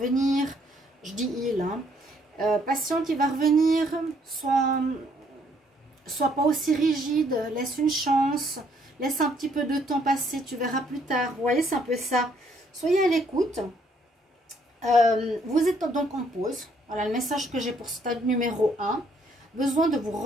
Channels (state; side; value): normal; both; correlation 0.68